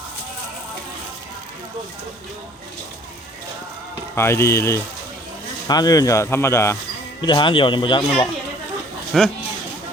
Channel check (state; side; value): normal; both; correlation 0.54